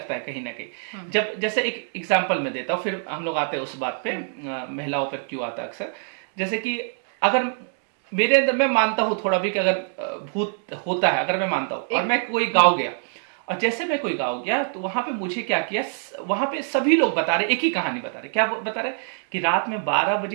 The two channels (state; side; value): silent; left; 62 dB below the other